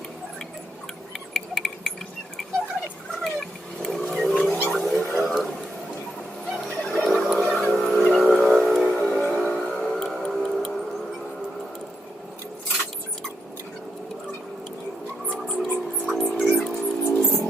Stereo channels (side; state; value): both; normal; correlation 0.82